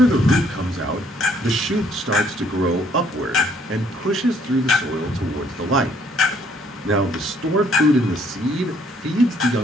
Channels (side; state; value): both; normal; correlation 0.65